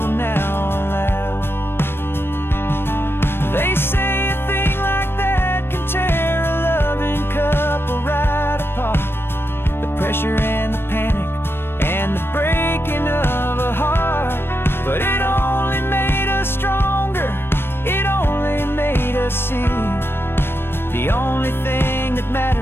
now allow. They say a thing like that can tear a loving couple right apart. The pressure and the panic and the breaking of a heart. But it only made us stronger, it only made us see the only thing that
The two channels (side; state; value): right; late; 0.11 ms